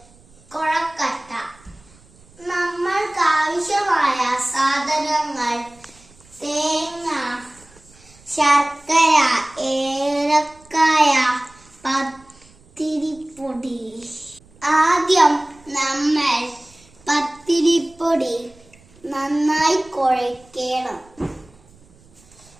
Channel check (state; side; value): noise; right; rumble, 28 dB below the sound